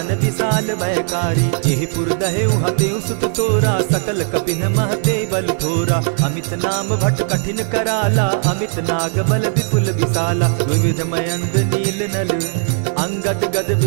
विशाल भयकारी। जेहि पुर दहेउ हतेउ सुत तोरा, सकल कपिन महते बल थोरा। अमित नाम भट कठिन कराला, अमित नाग बल विपुल विशाला। विविध मयंद नील नल, अंगद गद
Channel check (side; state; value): left; silent; 58 dB below the other